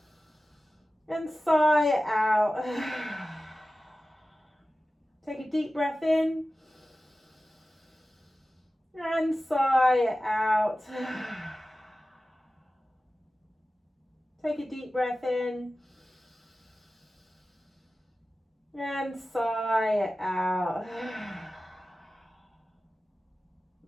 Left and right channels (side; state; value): both; normal; correlation 0.95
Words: and sigh it out. Take a deep breath in and sigh it out. Take a deep breath in and sigh it out.